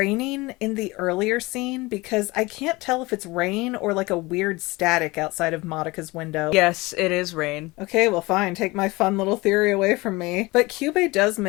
in the earlier scene? Because I can't tell if it's rain or like a weird static outside of Madoka's window. Yes, it is rain. Okay, well fine, take my fun little theory away from me. But Kyubey does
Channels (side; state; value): right; quieter; 22.5 dB